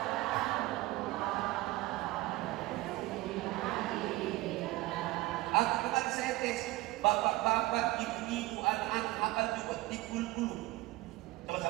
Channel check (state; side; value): quieter; left; 19.2 dB